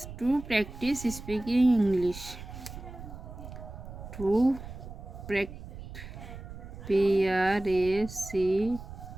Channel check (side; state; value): right; noise; rumble, 12 dB below the sound